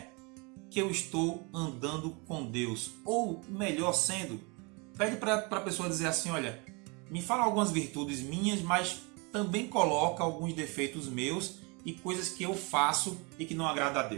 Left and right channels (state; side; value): quieter; left; 30.0 dB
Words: que eu estou andando com Deus? Ou, melhor sendo, pede para a pessoa dizer assim, olha, me fala algumas virtudes minhas, mas também coloca alguns defeitos meus e coisas que eu faço e que não agrada a